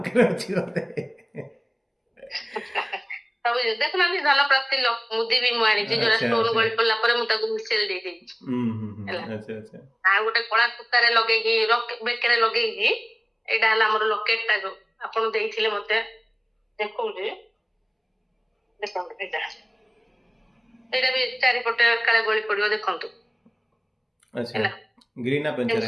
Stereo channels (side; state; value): both; identical; correlation 1.00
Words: ଅଛି ବୋଧେ। ସବୁ ଦେଖୁନାହାନ୍ତି ଧନ ପ୍ରାପ୍ତି ମୁଦି ବି ମୁଁ ଆଣିଛି ଯୋଉଟା ଆଚ୍ଛା ଷ୍ଟୋନ ଆଚ୍ଛା ଗଳି ପଡିଲା ପରେ ମୁଁ ତାକୁ ମିଶେଇ ଦେଇଦେଇଛି ହେଲା। ଆଚ୍ଛା ଆଚ୍ଛା ଆଉ ଗୋଟେ କଳା ସୂତାରେ ଲଗେଇକି ବେକରେ ଲଗେଇକି ଏଇଟା ହେଲା ଆମର ଲକେଟ ଟା ଯୋଉ ଆପଣ ଦେଇଥିଲେ ମତେ ଦେଖଉଛି ଦେଖନ୍ତୁ ଏଇଟା ବି ଚାରିପଟେ କାଳେ ଗଳି ପଡିବ ଦେଖନ୍ତୁ ଆଚ୍ଛା ହେଲା। ଗ୍ରୀନ୍ ନା ପେନ୍ସିଲ